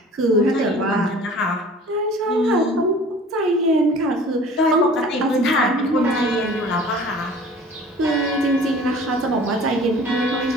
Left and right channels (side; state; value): both; normal; correlation 0.46